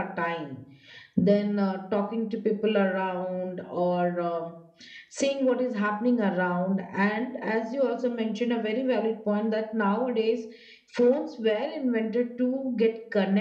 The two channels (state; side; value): identical; both; correlation 1.00